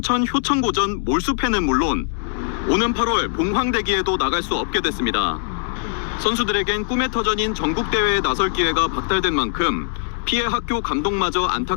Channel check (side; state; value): right; silent; digital silence